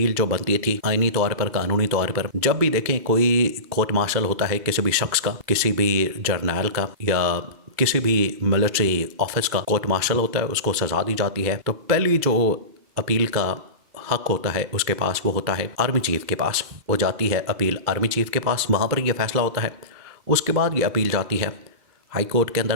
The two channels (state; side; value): late; left; 2.3 ms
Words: جو بنتی تھی آئینی طور پر، قانونی طور پر، جب بھی دیکھیں کوئی کورٹ مارشل ہوتا ہے کسی بھی شخص کا، کسی بھی جرنیل کا یا کسی بھی ملٹری آفس کا کورٹ مارشل ہوتا ہے، اس کو سزا دی جاتی ہے، تو پہلی جو اپیل کا حق ہوتا ہے اس کے پاس وہ ہوتا ہے آرمی چیف کے پاس۔ وہ جاتی ہے اپیل آرمی چیف کے پاس، وہاں پر یہ فیصلہ ہوتا ہے۔ اس کے بعد یہ اپیل جاتی ہے ہائی کورٹ کے